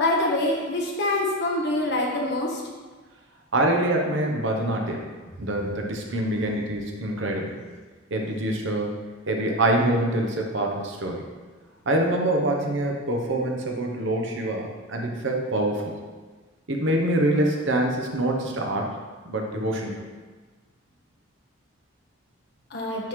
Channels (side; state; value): both; normal; correlation 0.23